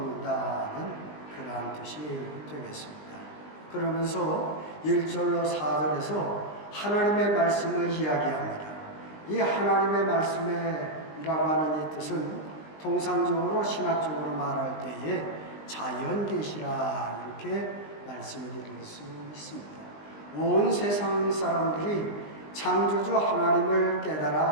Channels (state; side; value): late; right; 20 ms